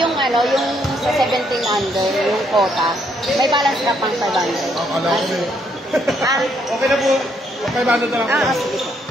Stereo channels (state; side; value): normal; both; correlation 0.72